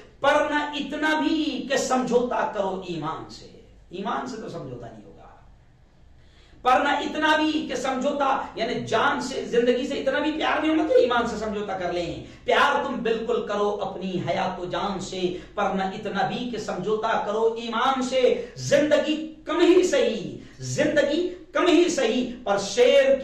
پر نہ اتنا بھی کہ سمجھوتا کرو ایمان سے. ایمان سے تو سمجھوتا نہیں ہوگا، پر نہ اتنا بھی کہ سمجھوتا یعنی جان سے زندگی سے اتنا بھی پیار نہیں ہونا کہ ایمان سے سمجھوتا کر لیں. پیار تم بالکل کرو اپنی حیات و جان سے, پر نہ اتنا بھی کہ سمجھوتا کرو ایمان سے. زندگی کم ہی صحیح, زندگی کم ہی صحیح, پر شیر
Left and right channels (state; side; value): identical; both; correlation 1.00